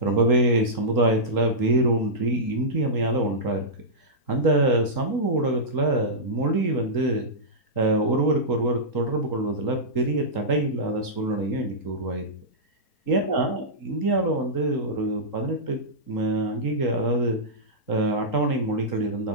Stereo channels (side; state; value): right; late; 3.8 ms